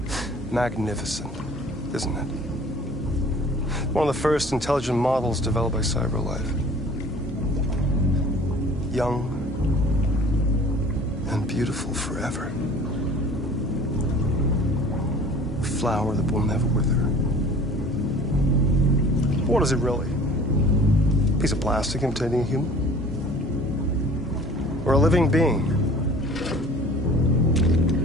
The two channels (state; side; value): normal; both; correlation 0.47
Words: Magnificent, isn't it? One of the first intelligent models developed by CyberLife. Young and beautiful forever. A flower that will never wither. What is it really? A piece of plastic imitating a human? Or a living being?